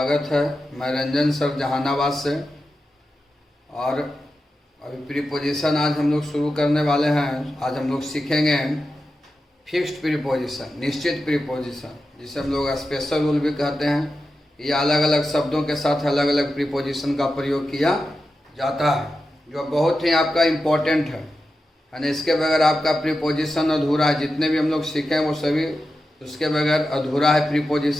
है। मैं रंजन सर जहानाबाद से। और अभी प्रीपोजिशन आज हम लोग शुरू करने वाले हैं। आज हम लोग सीखेंगे फिक्स्ड प्रीपोजिशन, निश्चित प्रीपोजिशन, जिसे हम लोग स्पेशल रूल भी कहते हैं। ये अलग अलग शब्दों के साथ अलग अलग प्रीपोजिशन का प्रयोग किया जाता है, जो बहुत ही आपका इम्पोर्टेंट है ना। इसके बगैर आपका प्रीपोजिशन अधूरा है। जितने भी हम लोग सीखे वो सभी उसके बगैर अधूरा है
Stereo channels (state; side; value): normal; both; correlation 0.91